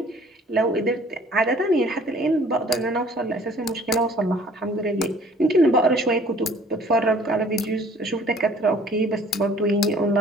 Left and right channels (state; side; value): normal; both; correlation 0.54